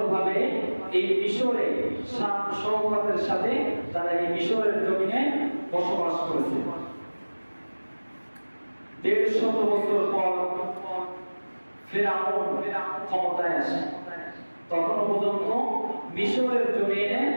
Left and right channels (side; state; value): both; inverted; correlation -1.00